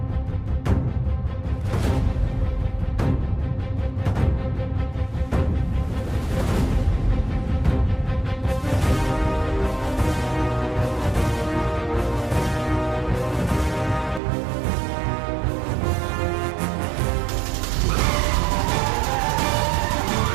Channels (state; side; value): drops out; left; at 14.2 s